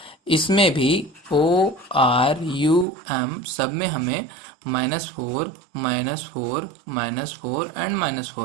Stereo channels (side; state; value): left; drops out; at 2.9 s